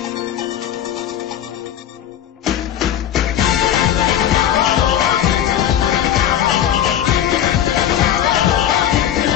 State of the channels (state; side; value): quieter; right; 10.5 dB